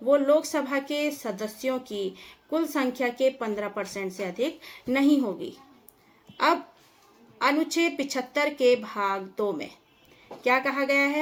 वो लोकसभा के सदस्यों की कुल संख्या के 15% से अधिक नहीं होगी। अब अनुच्छेद 75 के भाग 2 में क्या कहा गया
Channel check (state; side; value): identical; both; correlation 1.00